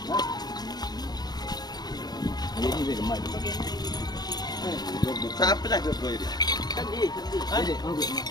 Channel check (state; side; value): late; right; 0.19 ms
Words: Siapa dah ke ini?